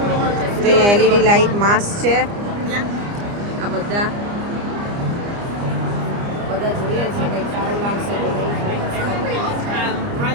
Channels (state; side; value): late; left; 29 ms